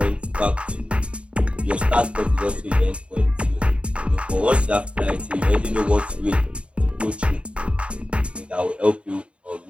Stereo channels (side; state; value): left; late; 0.060 ms